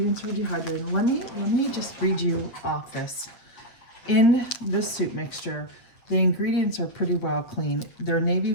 are dehydrated. Let me just read you off this. In this soup mixture, the ingredients are pretty well clean. They're navy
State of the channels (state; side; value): late; right; 8.4 ms